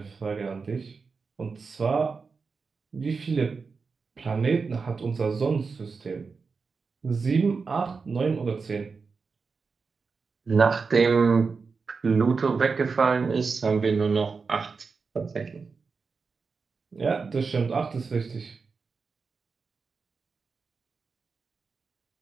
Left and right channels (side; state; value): left; quieter; 4.8 dB